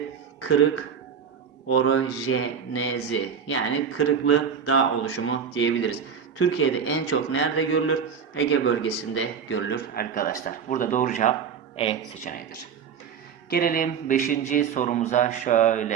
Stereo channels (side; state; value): left; quieter; 7.0 dB